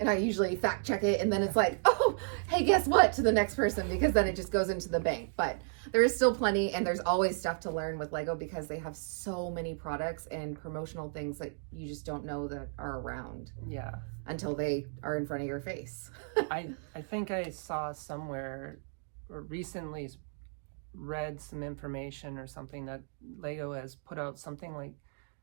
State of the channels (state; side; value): silent; left; digital silence